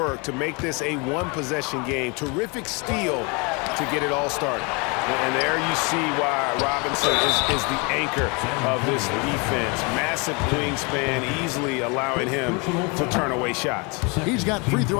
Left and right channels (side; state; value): right; quieter; 30.6 dB